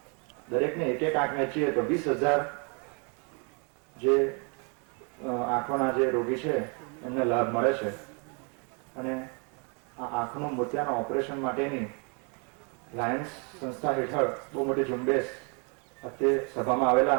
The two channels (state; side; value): quieter; left; 35.5 dB